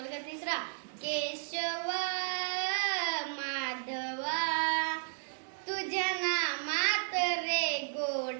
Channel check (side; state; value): left; silent; digital silence